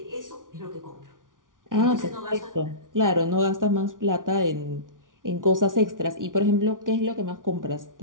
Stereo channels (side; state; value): left; late; 0.88 ms